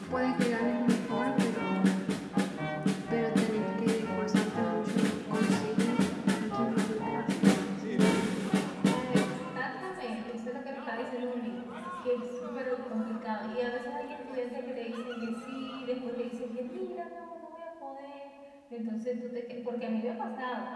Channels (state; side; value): identical; both; correlation 1.00